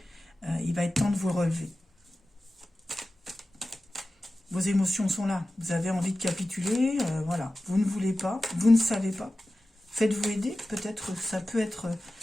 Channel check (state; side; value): normal; both; correlation 0.95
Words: il va être temps de vous relever. Vos émotions sont là. Vous avez envie de capituler, voilà. Vous ne voulez pas, vous ne savez pas. Faites-vous aider. Peut-être ça peut être